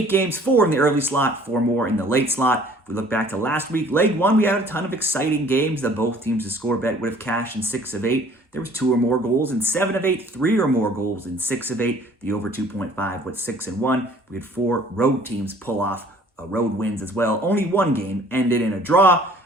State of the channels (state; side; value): normal; both; correlation 0.54